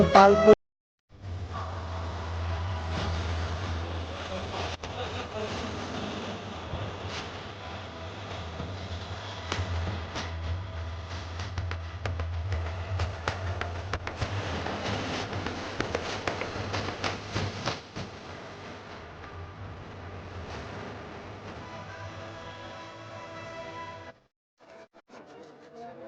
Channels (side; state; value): both; identical; correlation 1.00